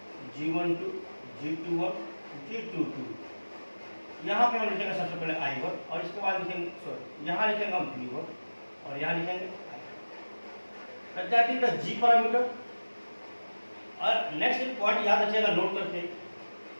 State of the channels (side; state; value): both; inverted; correlation -1.00